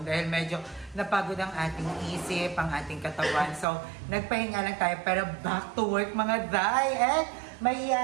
dahil medyo napagod ang ating isip, ang ating katawan. So nagpahinga lang tayo pero back to work mga Jai! And may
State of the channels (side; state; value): left; drops out; at 3.7 s